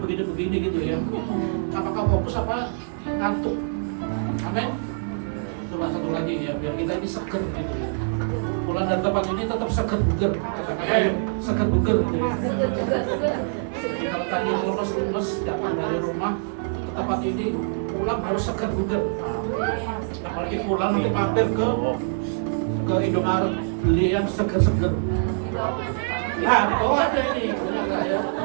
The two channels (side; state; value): left; silent; digital silence